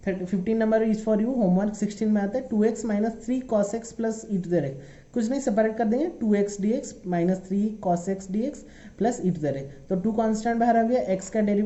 15 number is for you homework. 16 में आता है 2x minus 3 cos x plus e to the x, कुछ नहीं सेपरेट कर देंगे, 2x dx minus 3 cos x dx plus e to the x। तो 2 कांस्टेंट बाहर आ गया, x का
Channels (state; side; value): identical; both; correlation 1.00